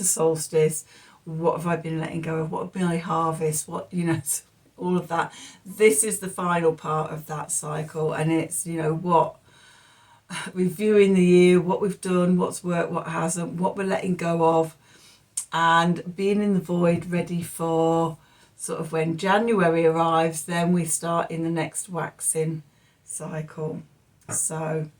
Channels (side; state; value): both; identical; correlation 1.00